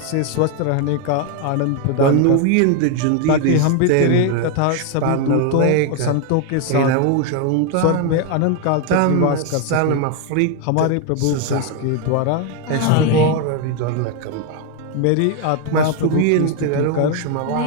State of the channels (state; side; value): different; both; correlation 0.01